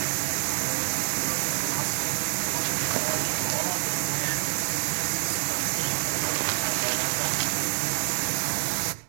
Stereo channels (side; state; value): left; silent; 60 dB below the other